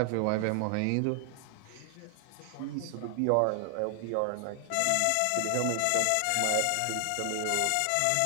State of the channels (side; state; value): both; different; correlation 0.00